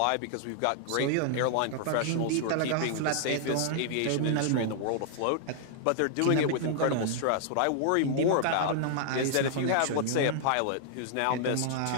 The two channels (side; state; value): both; different; correlation -0.01